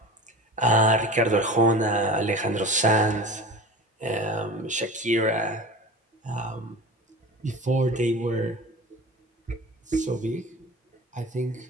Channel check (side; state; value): both; normal; correlation 0.34